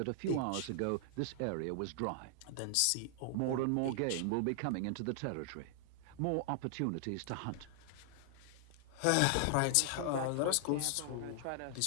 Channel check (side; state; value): both; different; correlation 0.00